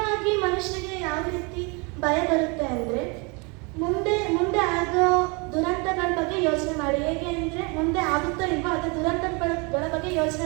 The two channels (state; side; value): quieter; left; 30.7 dB